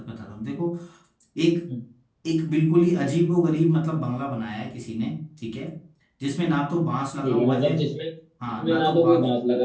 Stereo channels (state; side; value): identical; both; correlation 1.00